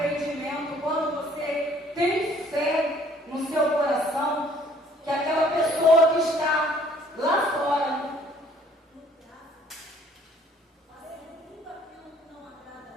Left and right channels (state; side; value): normal; both; correlation 0.59